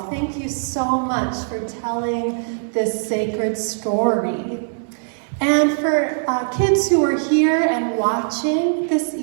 Thank you so much for telling this sacred story. And for kids who are here and watching this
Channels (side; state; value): left; silent; digital silence